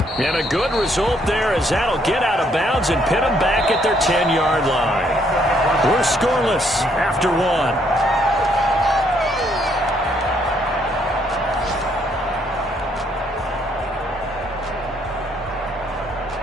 And a good result there as that'll get out of bounds and pin them back at their 10-yard line. We're scoreless after 1.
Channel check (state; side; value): normal; both; correlation 0.69